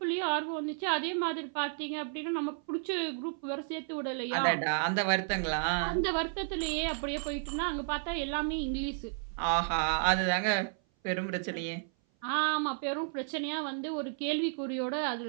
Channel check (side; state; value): left; silent; 55 dB below the other